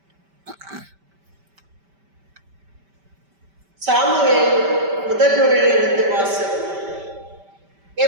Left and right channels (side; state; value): left; late; 5.1 ms